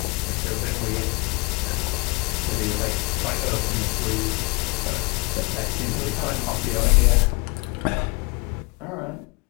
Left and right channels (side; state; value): right; quieter; 27.9 dB